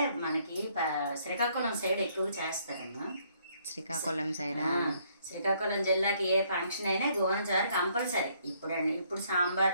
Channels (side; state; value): both; inverted; correlation -0.67